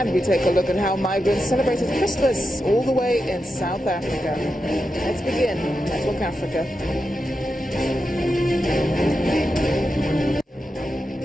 we take a look at how migrants celebrated Christmas all the way in South Africa. Let's begin Network Africa.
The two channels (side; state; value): both; normal; correlation 0.88